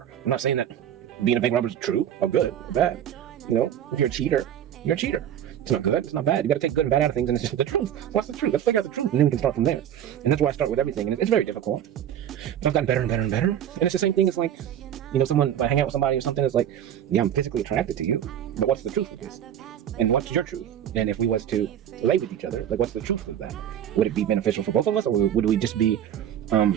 I'm not saying that being a bank robber is true or good or bad. You know, if you're a cheater, you're a cheater. It's not good, it's not bad. You gotta take good and bad out of things, and it's just the truth. What's the truth? Let's figure out the truth, and then we can start from there. And that's why I start with everything, and it's very difficult. But I've gotten better and better and better. And it's the same thing as like, someone, if I hang out with somebody or something, it's like, yeah, I'm physically attracted to you, but what's the truth of this? And what's your truth? And if we was to lay with each other, like, what's the truth of that? Would it be beneficial for both of us, or would we just be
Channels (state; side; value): quieter; left; 10.2 dB